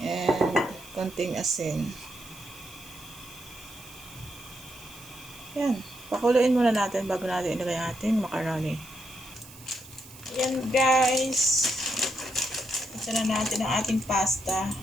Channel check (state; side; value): noise; right; hiss, 19 dB below the sound